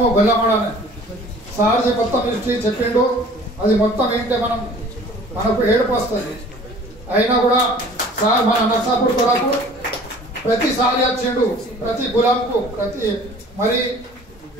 గొల్లమడనే సార్ది మొత్తం హిస్టరీ చెప్పిండు. అది మొత్తం ఏంటంటే మనకు ఏడుపు వస్తుంది. అయినా కూడా సార్ మన నర్సాపూర్ కొరకు ప్రతిసారి వచ్చిండు, ప్రతి గులాంకు మరి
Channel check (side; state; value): both; normal; correlation 0.49